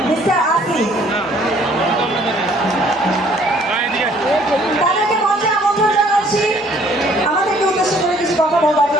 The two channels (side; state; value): both; normal; correlation 0.60